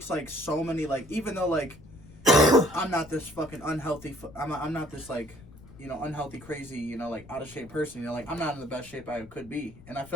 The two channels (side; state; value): left; noise; rumble, 20 dB below the sound